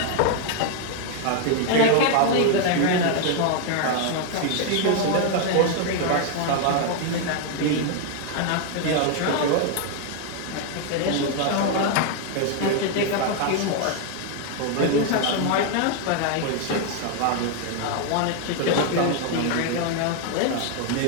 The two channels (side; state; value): both; different; correlation 0.00